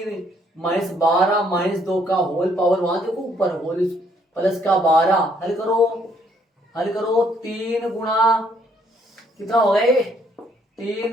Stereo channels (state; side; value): normal; both; correlation 0.68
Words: -12 -2 का होल पावर, वहां देखो ऊपर होल प्लस का 12, हल करो 3 गुणा कितना हो गए,